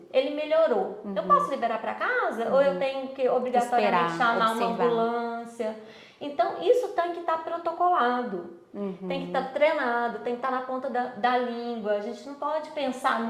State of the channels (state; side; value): identical; both; correlation 1.00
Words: ele melhorou. Eu posso liberar para casa ou eu tenho que obrigatoriamente chamar uma ambulância? Então, isso tem que estar protocolado, tem que estar treinado, tem que estar na ponta da língua. A gente não pode pensar